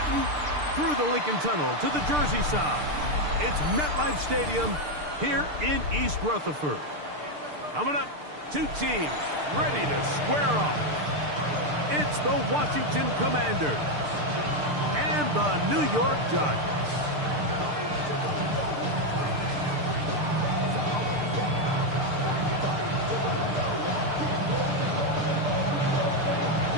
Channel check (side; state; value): left; late; 6.7 ms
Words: through the Lincoln Tunnel to the Jersey side. It's MetLife Stadium here in East Rutherford. Coming up, two teams ready to square off. It's the Washington Commanders and the New York Giants.